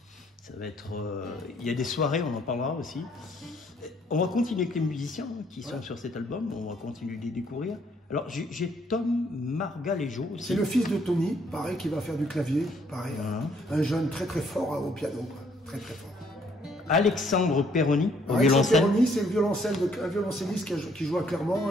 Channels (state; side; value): normal; both; correlation 0.66